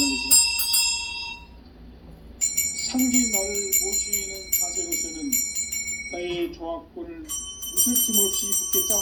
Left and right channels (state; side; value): identical; both; correlation 1.00